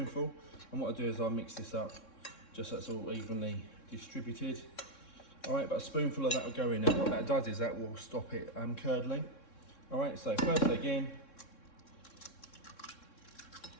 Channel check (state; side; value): late; right; 3.6 ms